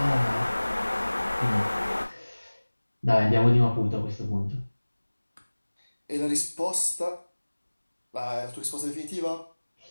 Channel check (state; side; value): inverted; both; correlation -1.00